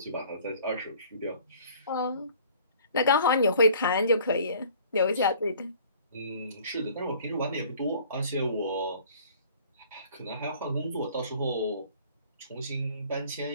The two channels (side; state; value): both; inverted; correlation -0.51